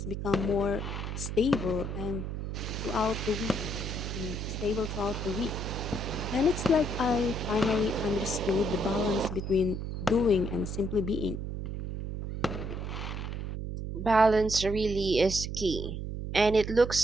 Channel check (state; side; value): noise; right; hum, 5 dB below the sound